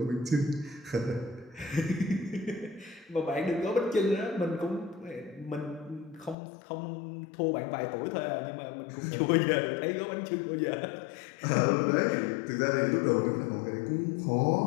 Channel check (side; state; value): right; drops out; at 6.4 s